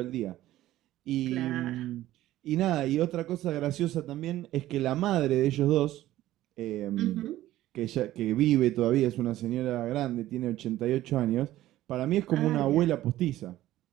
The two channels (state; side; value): quieter; left; 14.7 dB